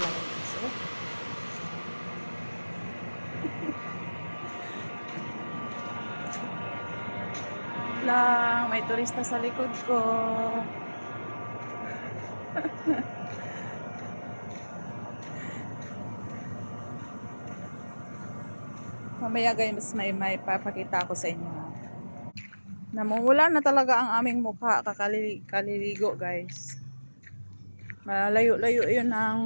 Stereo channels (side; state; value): both; inverted; correlation -1.00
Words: place. Lang, may turista sa likod ko. Mamaya guys, may papakita ko sa inyo. Namumula na talaga ang aming mukha, kaliligo guys. Malayo-layo yun